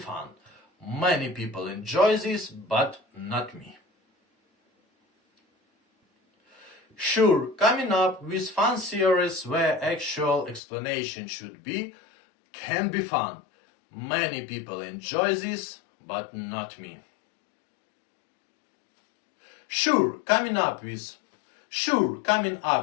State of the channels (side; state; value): right; drops out; at 10.6 s